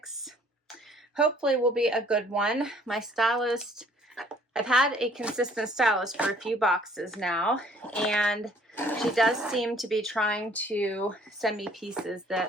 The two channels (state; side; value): normal; both; correlation 0.58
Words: hopefully will be a good one. My stylist, I've had a consistent stylist for a few boxes now, and she does seem to be trying to send me pieces that